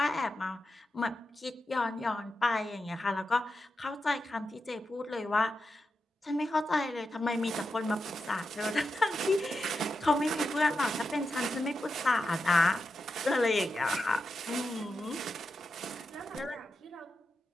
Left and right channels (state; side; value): normal; both; correlation 0.88